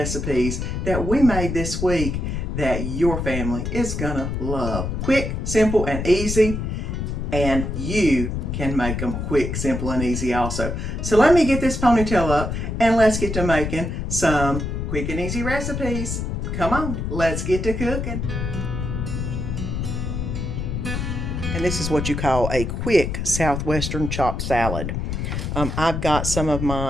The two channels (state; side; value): noise; left; rumble, 3 dB below the sound